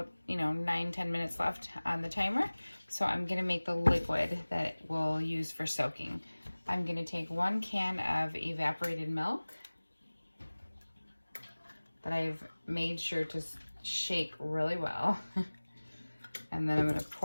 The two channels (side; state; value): both; inverted; correlation -1.00